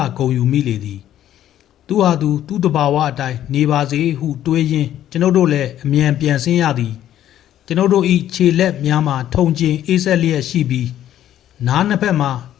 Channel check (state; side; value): quieter; right; 11.8 dB